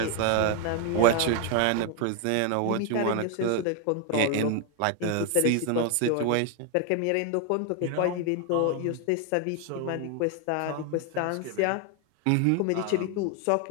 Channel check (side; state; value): both; different; correlation 0.01